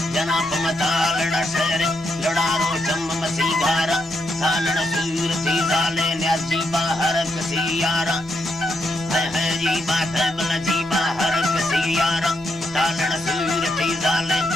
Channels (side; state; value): both; normal; correlation 0.80